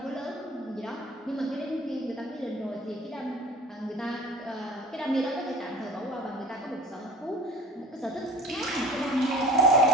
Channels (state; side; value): normal; both; correlation 0.42